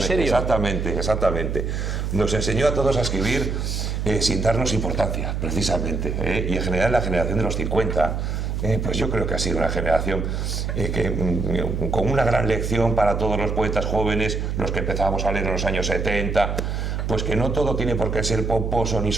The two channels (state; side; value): noise; right; hum, 2 dB below the sound